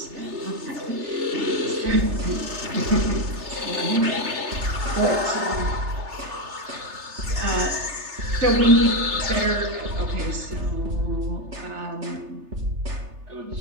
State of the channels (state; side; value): late; left; 3.3 ms